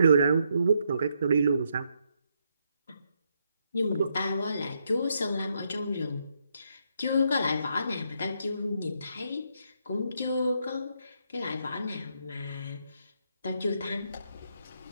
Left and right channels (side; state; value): both; inverted; correlation -0.77